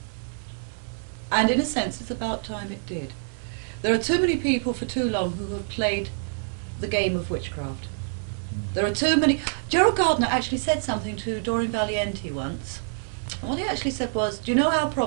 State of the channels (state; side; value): silent; left; digital silence